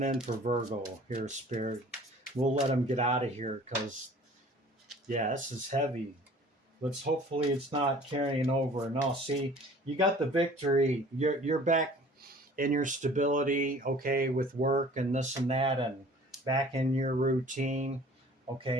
in for Virgo here, Spirit? We'll let them get out of here because, yeah, this is heavy. Let's hopefully it's not carrying over. No, see, you got the victory. You're back in your stability, okay, with work and this and that, and back in your routine,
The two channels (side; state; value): both; normal; correlation 0.49